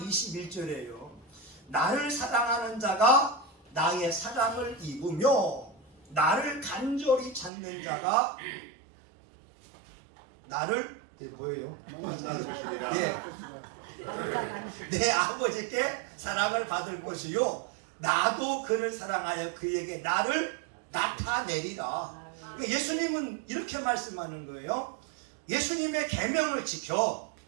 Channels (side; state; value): left; drops out; at 7.5 s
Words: 21절에요. 나를 사랑하는 자가 나의 사랑을 입으며 나를 간절히 찾는 자가 나를 뭐예요? 예. 내 아버지께 사랑을 받을 것이요 나도 그를 사랑하여 그에게 나를 나타내리라. 예수님은 이렇게 말씀하는 거예요. 예수님의 계명을 지켜